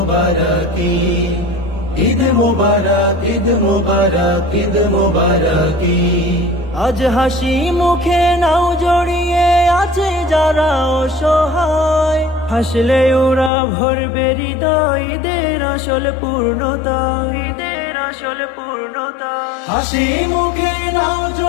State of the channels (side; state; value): right; drops out; at 13.5 s